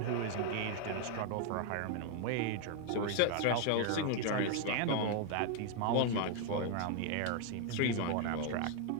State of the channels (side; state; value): both; different; correlation 0.00